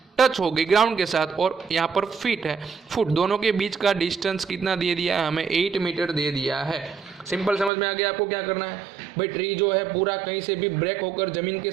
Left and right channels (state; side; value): drops out; left; at 7.7 s